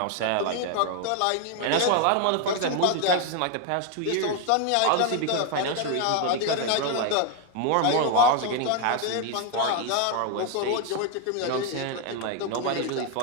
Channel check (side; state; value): both; different; correlation 0.01